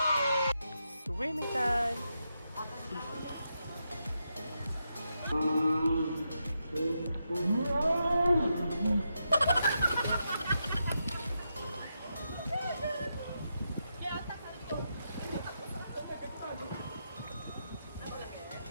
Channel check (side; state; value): both; inverted; correlation -0.85